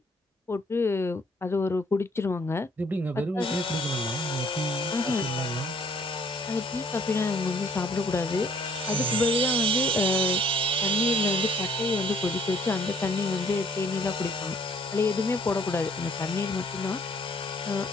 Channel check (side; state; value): both; normal; correlation 0.62